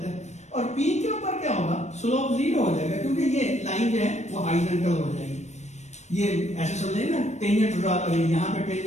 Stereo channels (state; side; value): late; right; 0.33 ms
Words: है, और पी के ऊपर क्या होगा, स्लोप जीरो हो जाएगा, क्योंकि ये लाइन जो है वो हॉरिजॉन्टल हो जाएगी। ये ऐसे समझेंगे ना, टेंजेंट ड्रा करेंगे, यहाँ पे